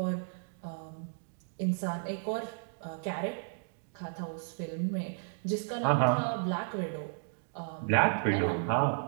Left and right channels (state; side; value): silent; left; digital silence